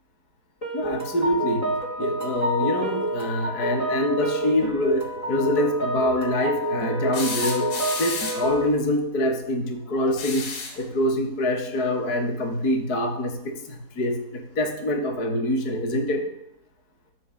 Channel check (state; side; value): late; right; 4.6 ms